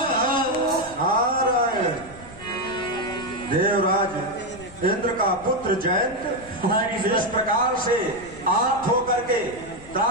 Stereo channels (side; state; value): left; noise; rumble, 19 dB below the sound